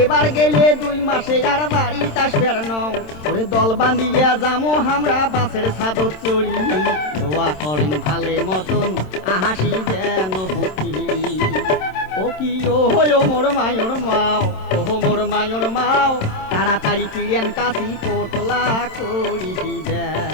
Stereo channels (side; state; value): right; late; 27 ms